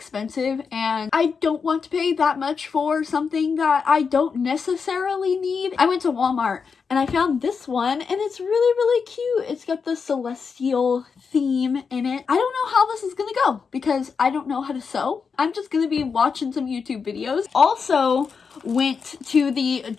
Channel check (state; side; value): quieter; right; 5.6 dB